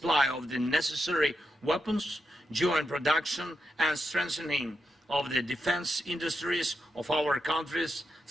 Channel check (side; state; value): both; normal; correlation 0.85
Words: of the necessary weapons, joint production and strengthening of the defense industries of our countries